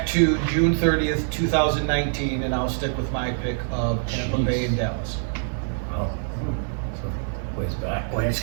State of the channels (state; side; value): silent; left; digital silence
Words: to June 30th, 2019, and I'll stick with my pick of Tampa Jeez. Bay and Dallas. Oh. Ways back. Boy, it's